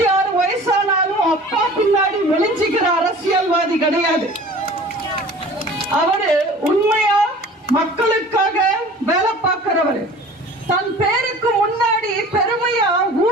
வயசானாலும் அப்பா பின்னாடி ஒளிஞ்சிக்கிற அரசியல்வாதி கிடையாது. அவரு உண்மையா மக்களுக்காக வேலை பார்க்கிறவர். தன் பேருக்கு முன்னாடி பெருமையா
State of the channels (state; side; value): normal; both; correlation 0.44